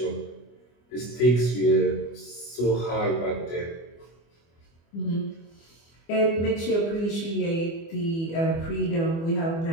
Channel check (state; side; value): late; right; 24 ms